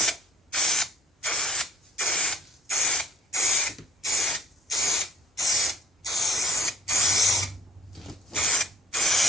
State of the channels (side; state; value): both; normal; correlation 0.59